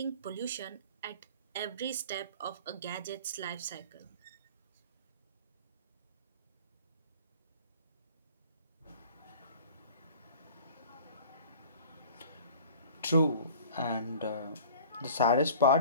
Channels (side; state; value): both; inverted; correlation -0.45